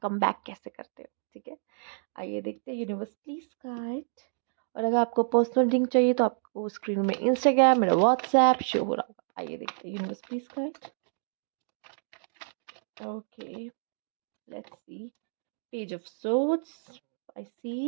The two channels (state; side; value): silent; left; digital silence